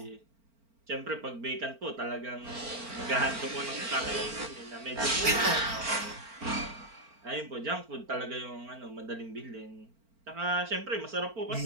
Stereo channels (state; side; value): late; left; 4.4 ms